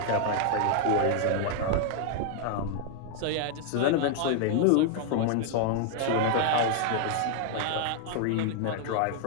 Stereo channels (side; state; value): both; different; correlation 0.00